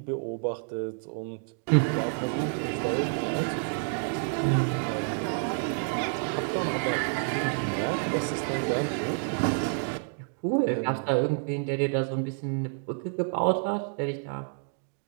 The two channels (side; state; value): left; silent; 56 dB below the other